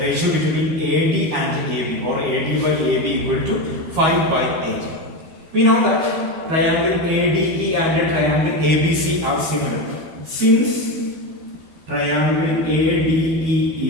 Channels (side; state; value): left; late; 13 ms